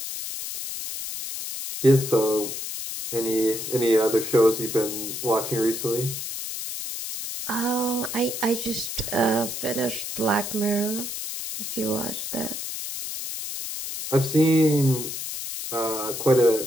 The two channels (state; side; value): noise; left; hiss, 6 dB below the sound